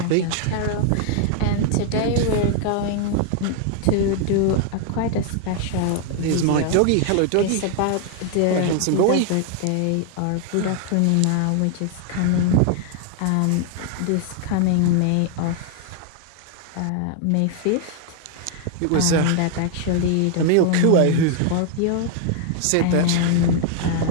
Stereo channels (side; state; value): both; different; correlation 0.00